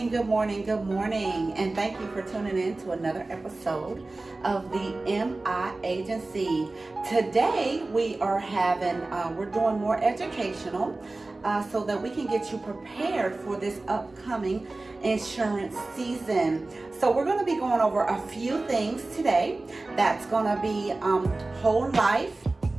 good morning, and thank you for tuning in to another episode of the MI Agency. Today we're doing more educational so that we can get you prepared for this upcoming insurance season. So we're going to be going over a few things today. That's going to be whole life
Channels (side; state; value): left; quieter; 3.1 dB